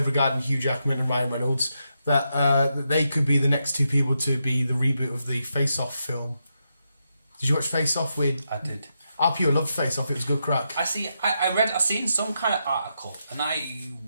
regarding Hugh Jackman and Ryan Reynolds, that they could be the next 2 people to be the reboot of the Face Off film. Did you watch Face Off with... I did. I pure loved Face Off, it was good crack. I seen some kind of article, and I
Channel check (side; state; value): both; inverted; correlation -0.84